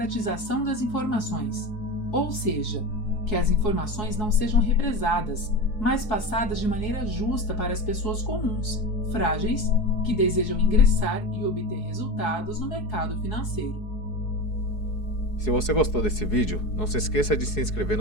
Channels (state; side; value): late; right; 4.7 ms